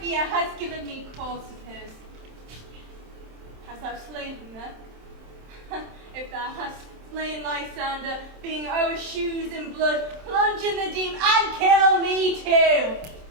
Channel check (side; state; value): left; late; 27 ms